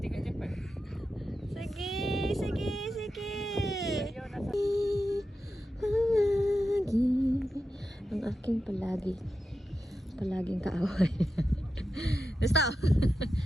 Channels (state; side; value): normal; both; correlation 0.90